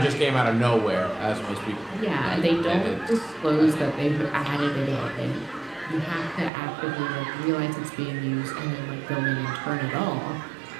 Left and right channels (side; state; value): left; drops out; at 6.5 s